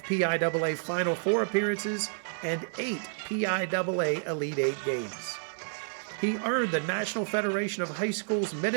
PIAA Final Four appearances, and 8 PIAA Elite 8 games. He earned the National Federation of High Schools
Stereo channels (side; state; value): left; silent; digital silence